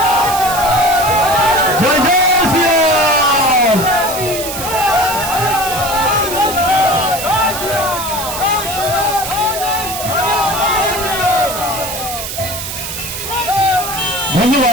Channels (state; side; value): noise; right; hiss, 6 dB below the sound